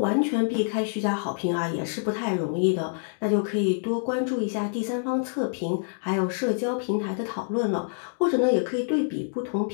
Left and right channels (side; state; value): right; silent; digital silence